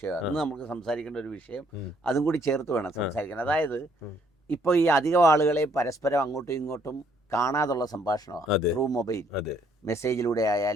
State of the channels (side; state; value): both; normal; correlation 0.67